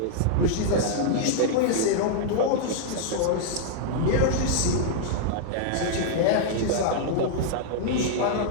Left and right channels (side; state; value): both; different; correlation -0.01